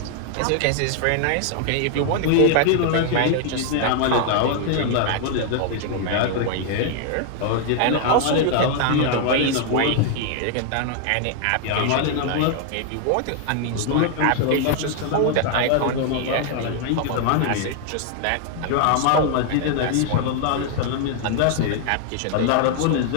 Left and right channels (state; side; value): different; both; correlation 0.00